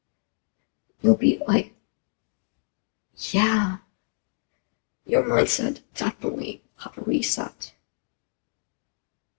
You'll be yeah, your mindset definitely have a reset.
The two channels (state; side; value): silent; right; digital silence